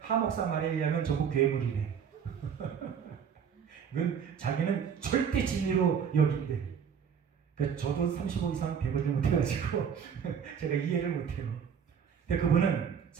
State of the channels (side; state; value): left; quieter; 7.4 dB